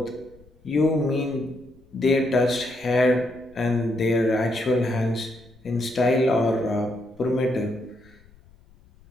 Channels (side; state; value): left; noise; rumble, 27 dB below the sound